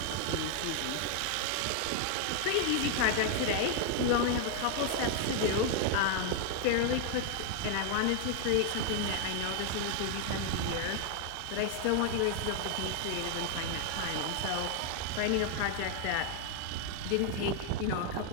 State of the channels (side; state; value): both; different; correlation 0.00